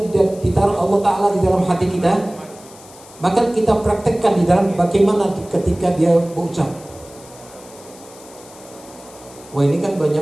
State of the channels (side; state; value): left; noise; hiss, 21 dB below the sound